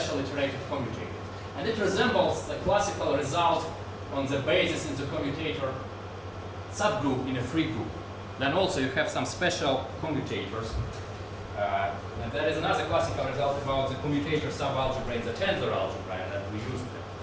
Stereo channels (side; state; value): both; identical; correlation 1.00